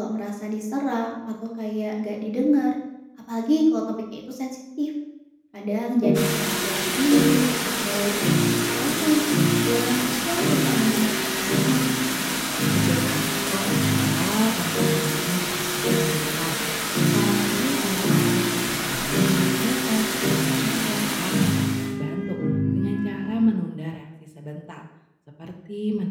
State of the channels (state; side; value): identical; both; correlation 1.00